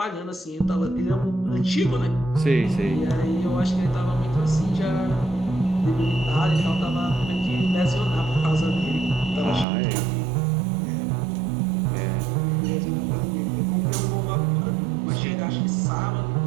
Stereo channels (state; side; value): drops out; left; at 9.7 s